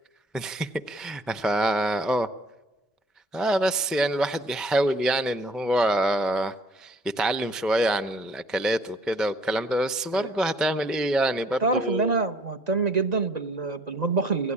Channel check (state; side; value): normal; both; correlation 0.57